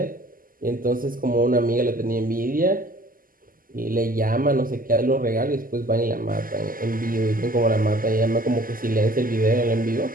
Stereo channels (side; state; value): left; late; 0.41 ms